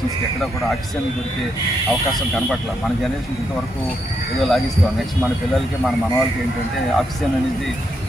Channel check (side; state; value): both; normal; correlation 0.79